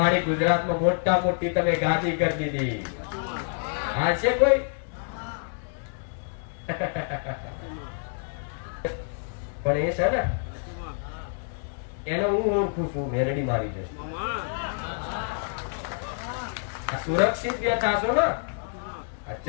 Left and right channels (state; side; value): silent; right; digital silence